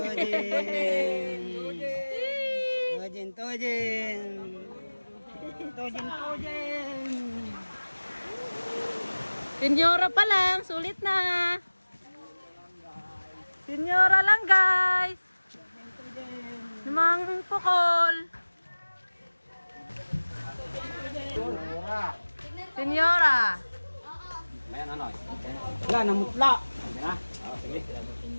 Tojin. Senyora pa lang. Sulit na. Senyora lang guys. Namang pukol. Senyora. Wala, namutla.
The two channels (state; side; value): inverted; both; correlation -1.00